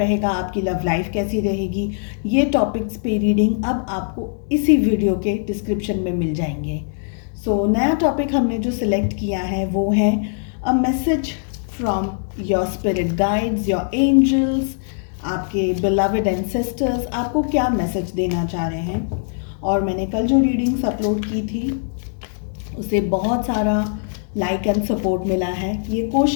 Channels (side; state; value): right; silent; 65 dB below the other